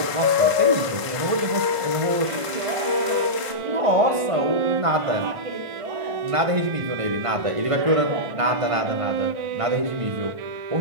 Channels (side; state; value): left; late; 1.5 ms